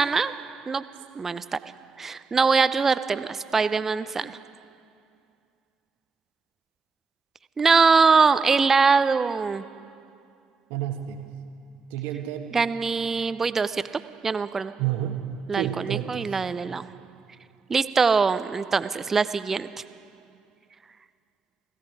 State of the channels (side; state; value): left; quieter; 4.7 dB